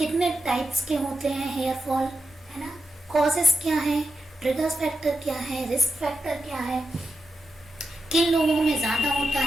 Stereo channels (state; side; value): normal; both; correlation 0.89